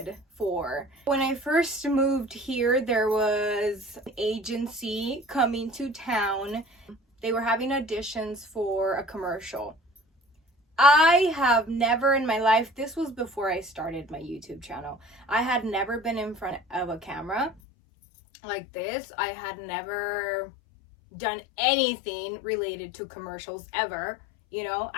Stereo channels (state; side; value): drops out; right; at 17.6 s